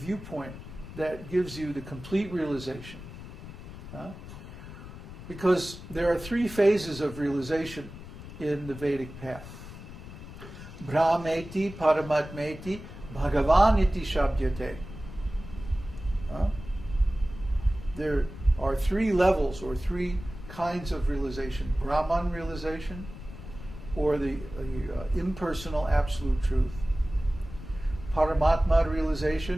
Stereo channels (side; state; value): left; noise; rumble, 13 dB below the sound